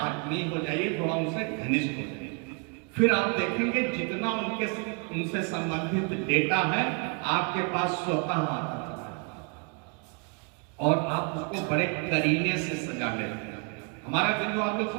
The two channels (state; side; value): quieter; left; 35.6 dB